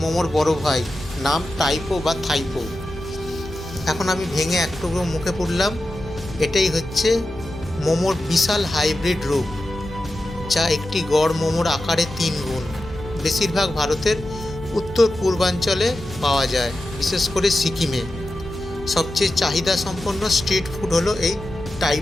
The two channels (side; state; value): left; noise; hum, 16 dB below the sound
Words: মোমোর বড় ভাই, নাম টাইপো বা থাইপো। এখন আমি ভেঙে এক টুকরো মুখে পুরলাম। এটাই হচ্ছে মোমোর বিশাল হাইব্রিড রূপ, যা একটি গড় মোমোর আকারে 3 গুণ। বেশিরভাগ ভারতের উত্তর পূর্বাঞ্চলে পাওয়া যায়, বিশেষ করে সিকিমে। সবচেয়ে চাহিদা সম্পন্ন স্ট্রিট ফুড হলো এই